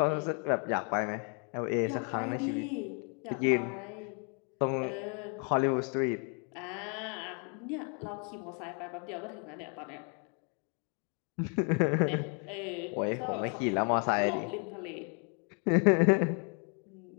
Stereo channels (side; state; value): right; quieter; 39.4 dB